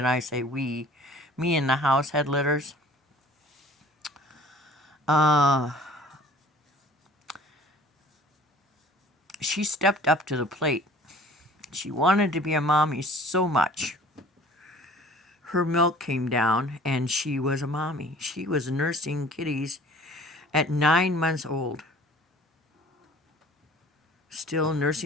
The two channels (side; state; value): both; normal; correlation 0.49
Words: I say we, me and the house had litters, she stepped up to the plate. She wanted to be a mommy so much. her milk came down and she was a mommy. She was nursing kitties at 9 months old. Still